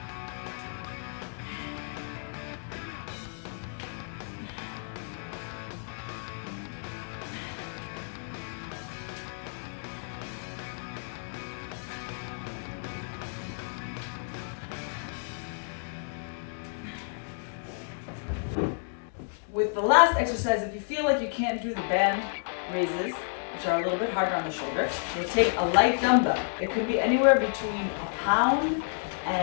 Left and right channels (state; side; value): silent; right; digital silence